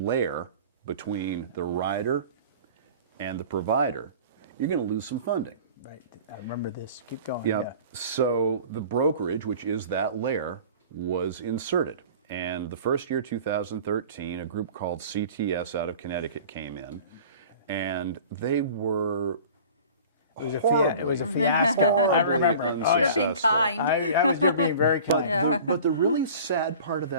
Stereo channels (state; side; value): inverted; both; correlation -0.43